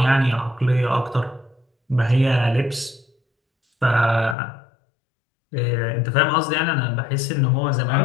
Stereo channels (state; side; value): drops out; right; at 4.4 s